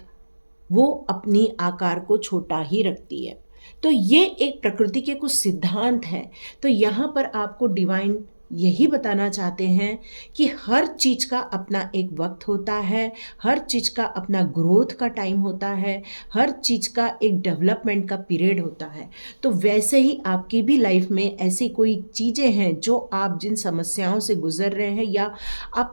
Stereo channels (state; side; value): inverted; both; correlation -1.00